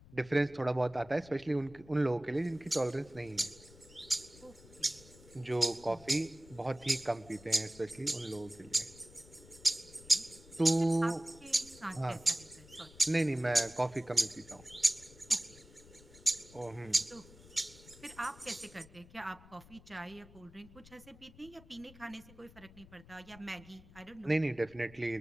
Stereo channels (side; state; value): left; noise; rumble, 21 dB below the sound